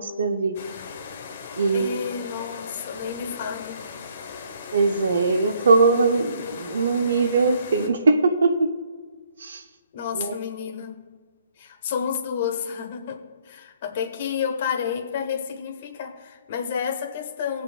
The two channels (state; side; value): inverted; both; correlation -0.66